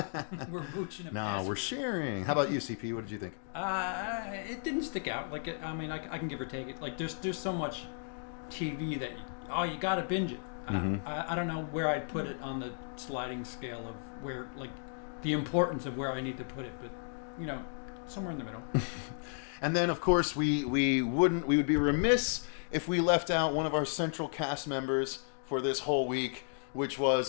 We're mooching. No, we're sharing. How about you, CP? What did you think? It didn't stick out. Like, I mean, I can give or take it. Like, there's so much TV that you gotta binge it. I don't know where I'd put it on the sliding scale of where, like, the importance of where I need to put it, but somewhere in the middle. And then, of course, we would be remiss if we left out one of our central cast members for this whole week, which was,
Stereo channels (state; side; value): silent; right; digital silence